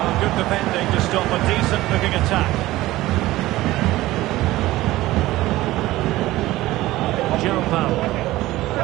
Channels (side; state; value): left; quieter; 17.1 dB